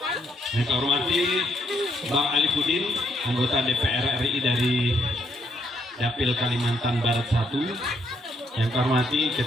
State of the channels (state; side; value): normal; both; correlation 0.73